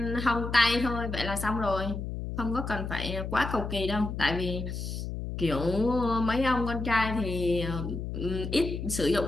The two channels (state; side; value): noise; left; hum, 5 dB below the sound